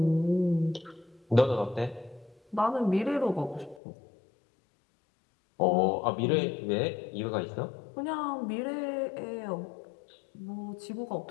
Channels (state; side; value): drops out; right; at 3.8 s